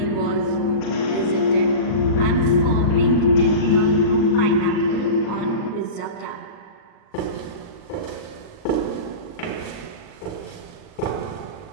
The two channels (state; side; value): late; right; 39 ms